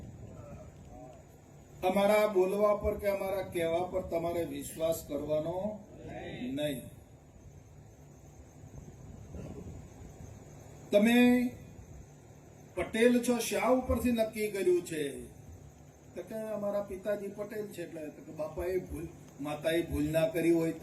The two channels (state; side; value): identical; both; correlation 1.00